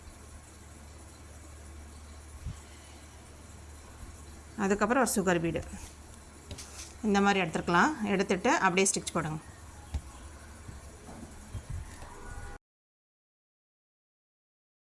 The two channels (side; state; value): both; identical; correlation 1.00